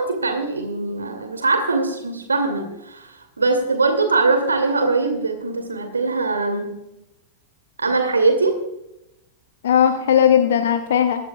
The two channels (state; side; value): inverted; both; correlation -0.61